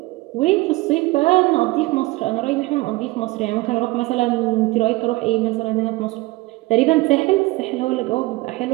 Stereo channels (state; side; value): quieter; left; 21.0 dB